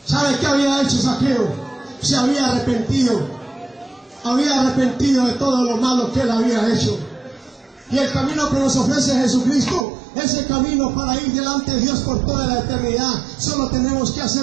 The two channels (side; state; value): left; drops out; at 9.9 s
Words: ¿Sabe qué había hecho Zaqueo? Se había arrepentido de todo lo malo que él había hecho. Y el camino que nos ofrece Jesucristo es el camino para ir delante de Dios por toda la eternidad. Solo tenemos que